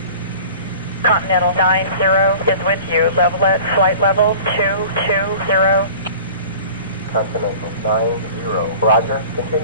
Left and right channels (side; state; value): both; inverted; correlation -0.43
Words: Continental 90 is with you, level at flight level 220. Continental 90, roger.